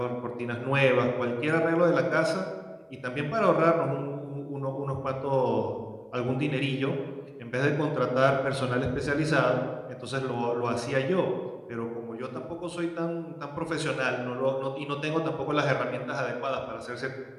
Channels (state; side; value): identical; both; correlation 1.00